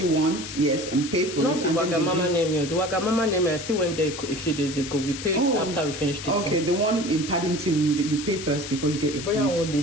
you want, yes, and pay for Not it. Not the Wagamama name. The Wagamama name, I still went there a few days ago. We paid after we finished it. Okay, the one in Paddington, that you pay first before you get your food.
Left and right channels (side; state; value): left; noise; hiss, 9 dB below the sound